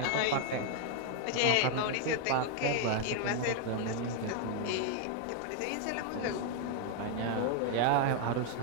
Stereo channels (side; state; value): both; different; correlation 0.01